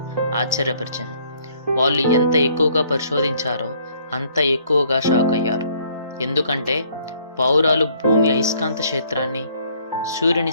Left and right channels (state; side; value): inverted; both; correlation -0.63